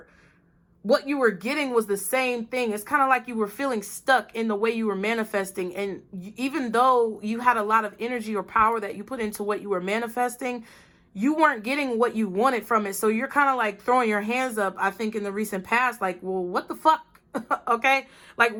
what you were getting, was the same thing. It's kind of like you were feeling stuck in the way you were manifesting. And even though you had a lot of energy or power that you put into what you were manifesting, you weren't getting what you wanted from it. So you're kind of like throwing your hands up, I think, in the recent past, like, well, what the fuck? Okay, like,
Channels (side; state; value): both; identical; correlation 1.00